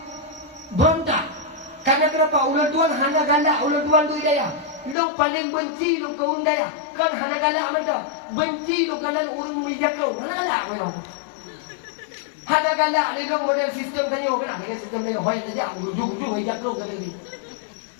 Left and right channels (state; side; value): drops out; right; at 5.0 s